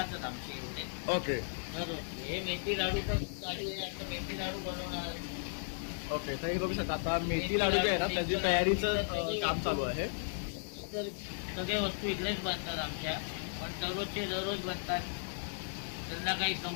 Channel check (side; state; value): right; silent; digital silence